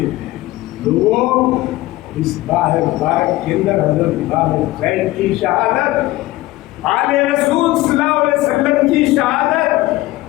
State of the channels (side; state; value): right; quieter; 18.1 dB